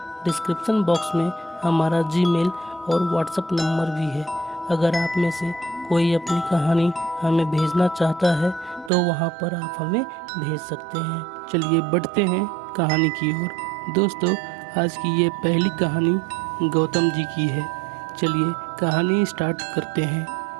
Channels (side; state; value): left; drops out; at 8.9 s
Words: डिस्क्रिप्शन बॉक्स में हमारा जीमेल और व्हाट्सएप नंबर भी है। अगर आप में से कोई अपनी कहानी हमें भेजना चाहता है तो वहाँ पर आप हमें भेज सकते हैं। चलिए बढ़ते हैं कहानी की ओर। दोस्तों, आज की ये पहली कहानी गौतम जी की है। चलिए कहानी स्टार्ट करते हैं।